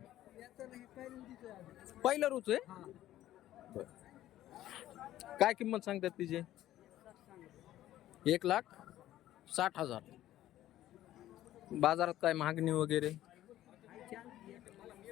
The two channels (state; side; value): quieter; right; 13.7 dB